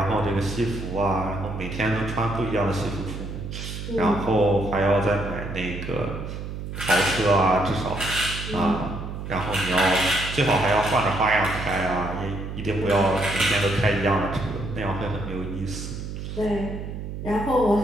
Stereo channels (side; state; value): right; noise; hum, 7 dB below the sound